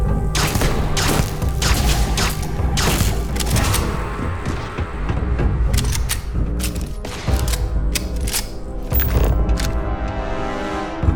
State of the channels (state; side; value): identical; both; correlation 1.00